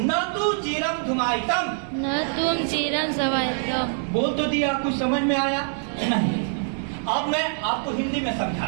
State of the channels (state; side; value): silent; left; digital silence